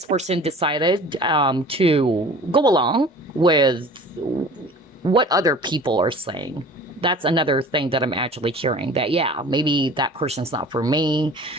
person decided to go along with what other people are saying. That's another thing that I'm actually hearing, that, yeah, maybe that person's not for me.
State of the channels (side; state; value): both; normal; correlation 0.44